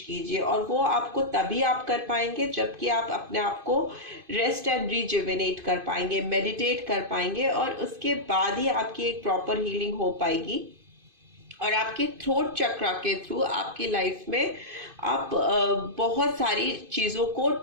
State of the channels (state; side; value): late; left; 2.5 ms